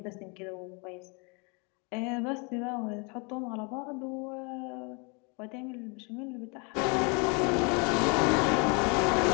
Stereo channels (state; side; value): quieter; right; 32.6 dB